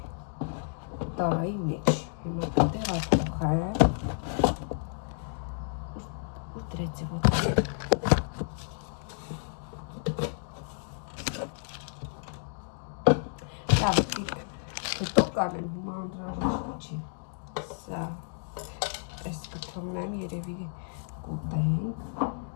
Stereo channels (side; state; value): right; silent; digital silence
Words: տարայի մեջ, հիմա տեղափոխեմ, ու կանեմ, հիմա անհրաժեշտ չի։ Սա այս կթողնեմ, երևի կուտենք։